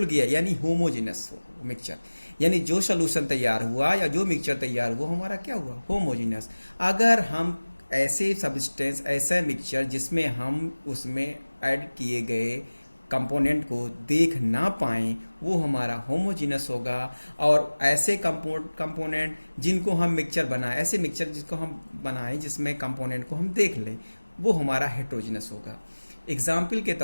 गया, यानी होमोजीनस मिक्सचर। यानी जो सॉल्यूशन तैयार हुआ या जो मिक्सचर तैयार हुआ, हमारा क्या हुआ? होमोजीनस। अगर हम ऐसे सब्सटेंस, ऐसा मिक्सचर जिसमें हम उसमें ऐड किए गए कंपोनेंट को देख ना पाएं, वो हमारा होमोजीनस होगा। और ऐसे कंपोनेंट जिनको हम मिक्सचर बनाएं, ऐसे मिक्सचर जिसको हम बनाएं जिसमें कंपोनेंट को हम देख लें, वो हमारा हेट्रोजीनस होगा। एग्जाम्पल के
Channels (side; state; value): both; inverted; correlation -1.00